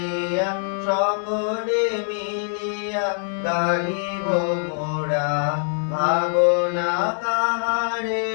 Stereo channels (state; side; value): silent; right; 61 dB below the other